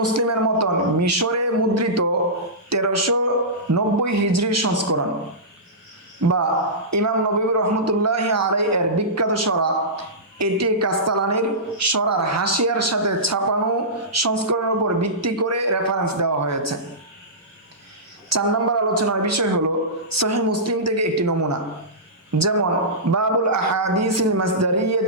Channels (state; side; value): normal; both; correlation -0.17